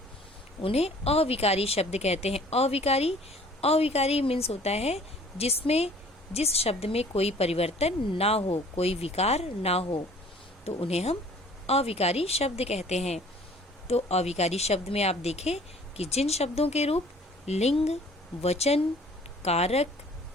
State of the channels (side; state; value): both; normal; correlation 0.52